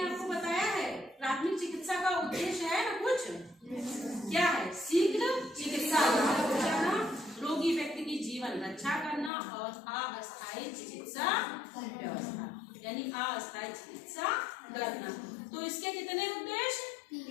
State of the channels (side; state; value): right; drops out; at 9.3 s